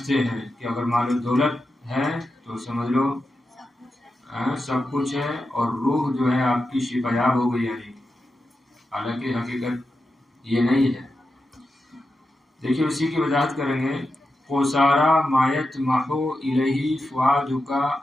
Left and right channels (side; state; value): both; normal; correlation 0.89